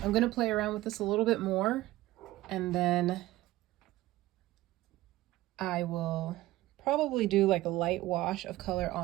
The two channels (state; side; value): quieter; left; 16.9 dB